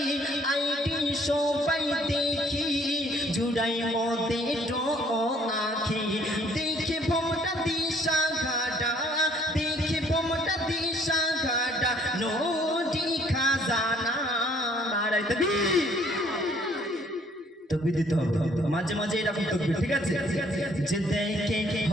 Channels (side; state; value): both; normal; correlation 0.61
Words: আইডি সবাই দেখি চুরাই মতে তো আখি দেখে ভোমটা দিশা ঘাটা দেখে ভোমটা দিশা ঘাটা নদী খাজানা নারায়ে তাকবীর তাকবীর দিতে হবে মাঝে মাঝে এরকম তাকবীর ঠিক আছে যে দেখে